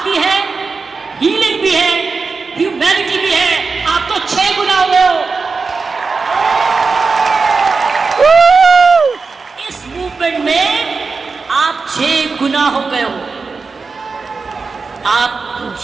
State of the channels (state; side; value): quieter; left; 4.5 dB